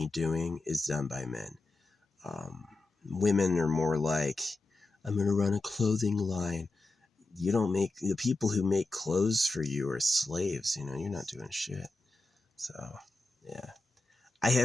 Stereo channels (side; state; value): right; quieter; 3.1 dB